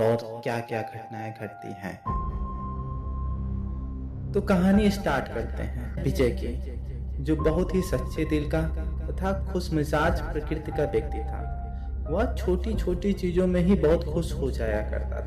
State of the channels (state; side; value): identical; both; correlation 1.00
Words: क्या क्या घटनाएं घटती हैं। तो कहानी स्टार्ट करते हैं विजय की, जो बहुत ही सच्चे दिल का तथा खुशमिजाज प्रकृति का व्यक्ति था। वह छोटी छोटी चीजों में ही बहुत खुश हो जाया करता